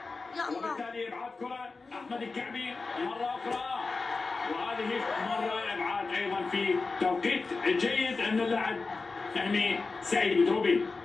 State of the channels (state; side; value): quieter; right; 4.0 dB